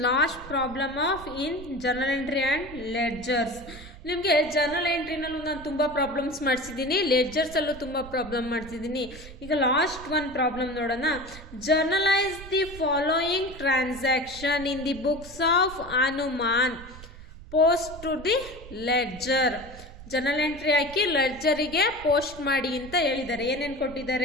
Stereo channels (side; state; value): right; noise; rumble, 16 dB below the sound